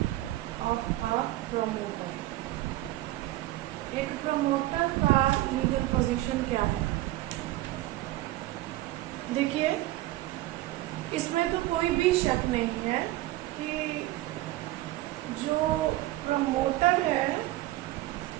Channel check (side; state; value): left; quieter; 16.8 dB